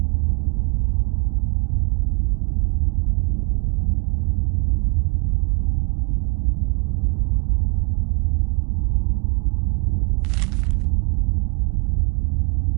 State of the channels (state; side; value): quieter; left; 32.5 dB